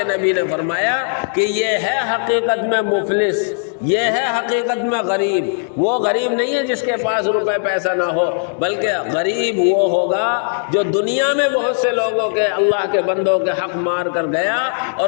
نبی نے فرمایا کہ یہ ہے حقیقت میں مفلس، یہ ہے حقیقت میں غریب۔ وہ غریب نہیں ہے جس کے پاس روپے پیسہ نہ ہو، بلکہ غریب وہ ہوگا جو دنیا میں بہت سے لوگوں کے، اللہ کے بندوں کے حق مار کر گیا،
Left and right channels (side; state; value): right; silent; digital silence